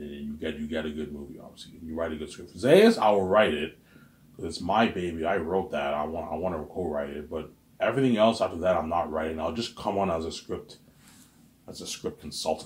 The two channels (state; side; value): identical; both; correlation 1.00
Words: you get a good movie, obviously. And you write a good script. Zayas, I will write it. It's my baby. I wrote that. I want to co-write it, but everything else after that, I'm not writing. I'll just come on as a script